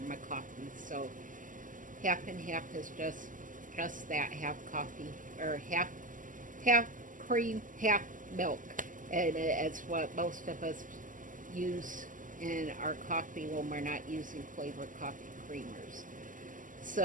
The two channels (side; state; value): left; late; 0.38 ms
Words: coffee. So half and half is just that, half coffee, or half cream, half milk. And it's what most of us use in our coffee when we're not using flavored coffee creamers.